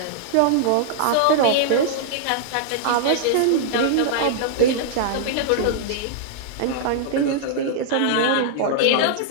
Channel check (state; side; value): different; both; correlation -0.01